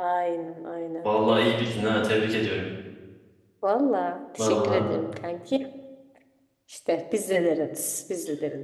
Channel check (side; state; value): both; identical; correlation 1.00